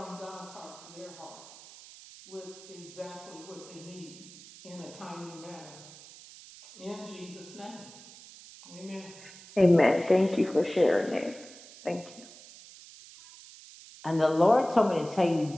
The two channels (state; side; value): noise; right; hiss, 19 dB below the sound